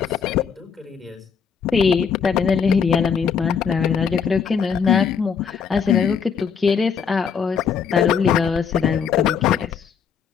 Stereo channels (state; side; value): quieter; right; 6.7 dB